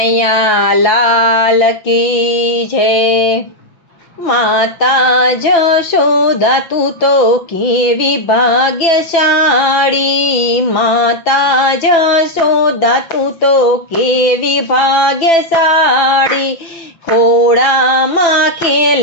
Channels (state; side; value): late; right; 6.0 ms